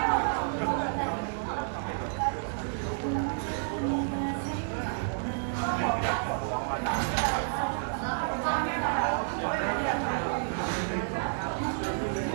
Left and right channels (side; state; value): left; silent; digital silence